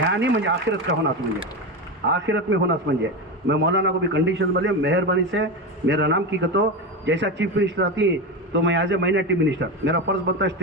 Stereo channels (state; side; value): normal; both; correlation 0.18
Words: नहीं म्हणजे आखिरत का होना म्हणजे आखिरत में होना म्हणजे मैं मौलाना को भी कंडीशन बोले मेहरबानी से मेरा नाम की कहतो, जैसा चीफ मिनिस्टर आती तो मैं एज ए माइनॉरिटी मिनिस्टर मेरा फर्ज बनता है